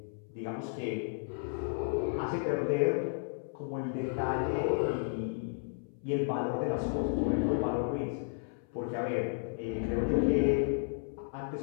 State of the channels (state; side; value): silent; right; 56 dB below the other